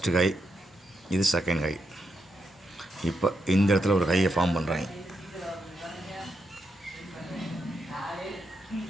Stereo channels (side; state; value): both; normal; correlation 0.83